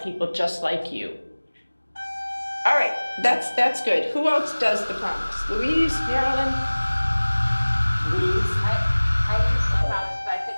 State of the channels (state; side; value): inverted; both; correlation -1.00